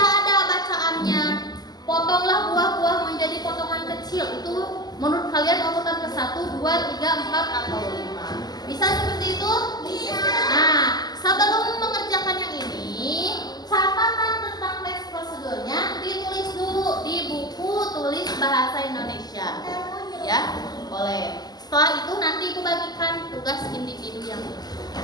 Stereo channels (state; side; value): late; right; 0.20 ms